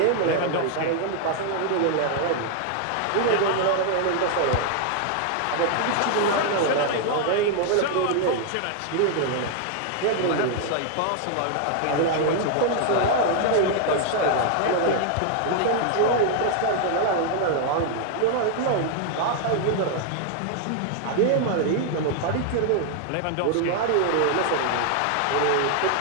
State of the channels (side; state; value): both; different; correlation 0.00